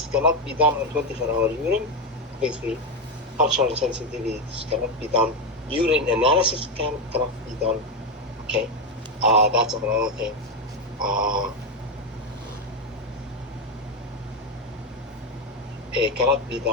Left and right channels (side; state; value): both; normal; correlation 0.09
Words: cannot be done on 24-hour urine? Basically, cultural sensitivities cannot be done. Urine analysis cannot be done. Okay, that's another thing. It cannot be